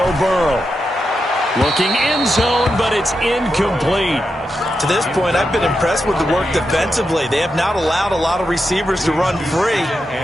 Burrow. Looking end zone, but it's incomplete. To this point, I've been impressed with the work defensively. They have not allowed a lot of receivers to run free.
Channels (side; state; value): both; normal; correlation 0.87